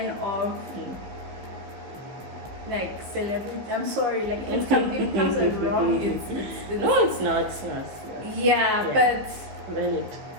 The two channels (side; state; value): left; late; 15 ms